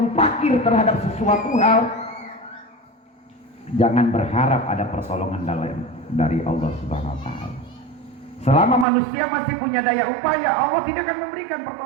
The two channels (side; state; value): left; drops out; at 8.8 s